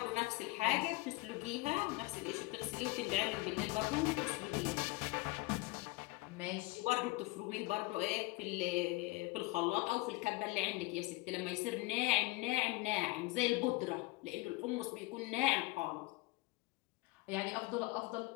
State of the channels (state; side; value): quieter; right; 22.1 dB